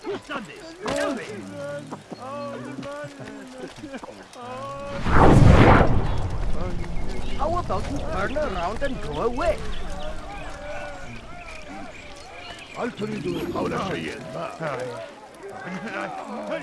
Who's done this? Tell me. How about you turn around and go away? هل تريد قول شيء ما؟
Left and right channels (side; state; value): both; identical; correlation 1.00